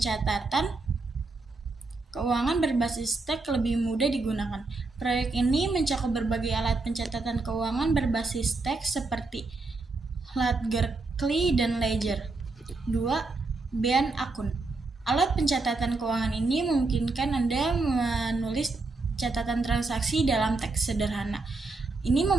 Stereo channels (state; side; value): quieter; left; 3.5 dB